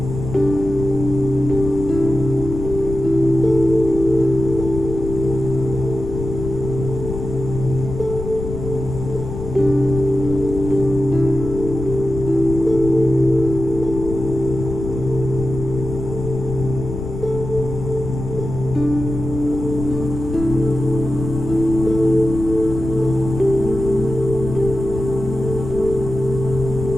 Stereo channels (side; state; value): left; noise; rumble, 7 dB below the sound